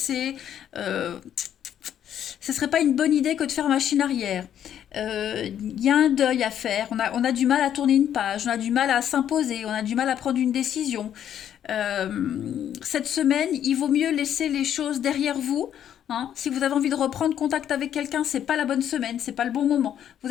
euh, ce serait pas une bonne idée que de faire machine arrière. Il y a un deuil à faire, on a du mal à tourner une page, on a du mal à s'imposer, on a du mal à prendre une décision. Cette semaine, il vaut mieux laisser les choses derrière vous. Hein. Si vous avez envie de reprendre contact avec quelqu'un, c'est pas la bonne semaine, c'est pas le bon moment. Vous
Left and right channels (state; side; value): quieter; right; 10.0 dB